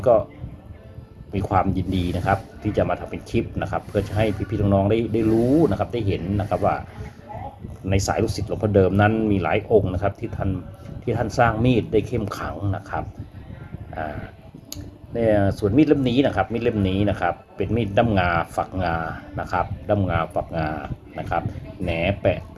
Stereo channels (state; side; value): identical; both; correlation 1.00